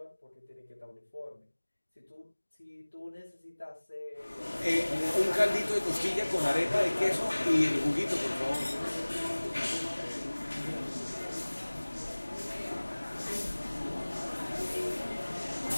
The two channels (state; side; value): inverted; both; correlation -1.00